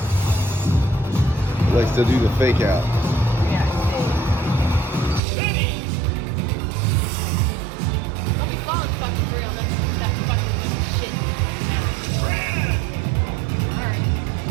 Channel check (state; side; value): drops out; left; at 5.2 s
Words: Likes to do the fake out. Yeah. Don't be falling fucking for real. That fucking little shit sound. Alright.